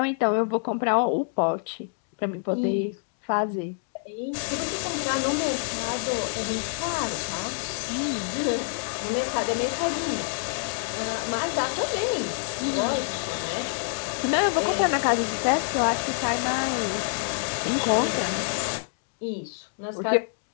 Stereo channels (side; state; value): right; silent; digital silence